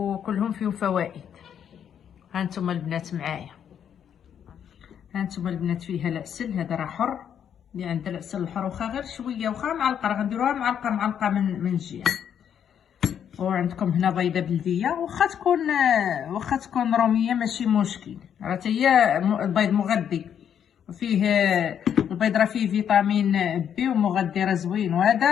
فيهم فوائد. هانتوما البنات معايا، هانتوما البنات فيها العسل، هذا راه حر، اللي عنده العسل الحر واخا غير شويه، واخا معلقه، راه غنديروها معلقه من الجهه. وعندكم هنا بيضه بلديه، واخا تكون روميه ماشي مشكل، راه هي البيض مغذي، وفيه البيض راه فيه فيتامين بي ومغذي راه زوين. وهذا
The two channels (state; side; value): quieter; right; 8.8 dB